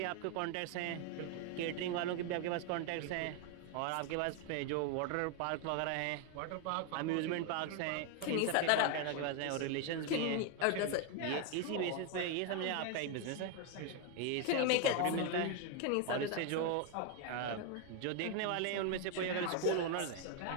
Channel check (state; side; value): different; both; correlation 0.01